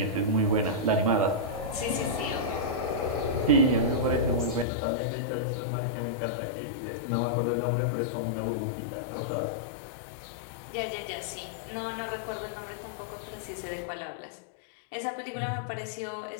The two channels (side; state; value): right; drops out; at 4.7 s